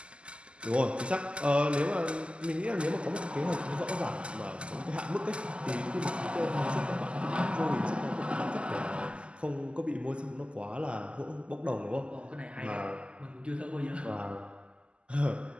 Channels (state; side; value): late; left; 0.053 ms